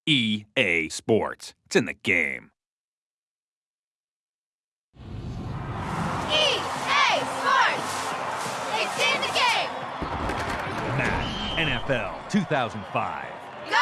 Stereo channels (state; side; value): identical; both; correlation 1.00